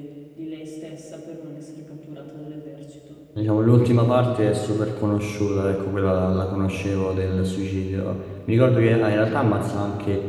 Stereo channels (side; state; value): both; identical; correlation 1.00